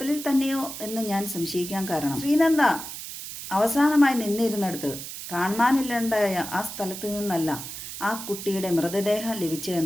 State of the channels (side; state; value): right; noise; hiss, 9 dB below the sound